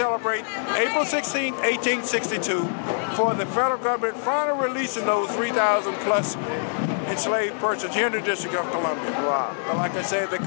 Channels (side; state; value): right; silent; 62 dB below the other